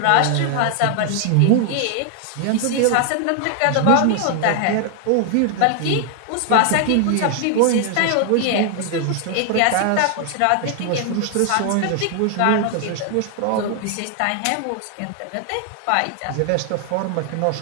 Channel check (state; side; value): different; both; correlation 0.00